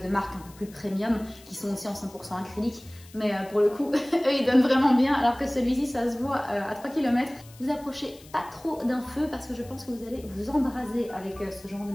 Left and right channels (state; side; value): noise; left; hiss, 23 dB below the sound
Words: marques un peu plus premium, qui sont aussi en 100% acrylique. Mais pour le coup, eux ils donnent vraiment bien, alors que celui-ci ça se voit à 3 km. Vous approchez pas trop d'un feu parce que je pense que vous allez vous embraser avec ce genre de